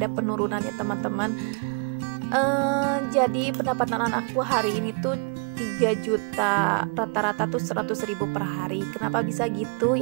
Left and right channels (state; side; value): quieter; left; 38.7 dB